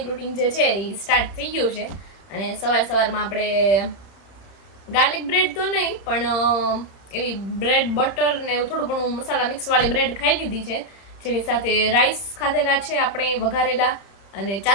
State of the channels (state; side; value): late; right; 30 ms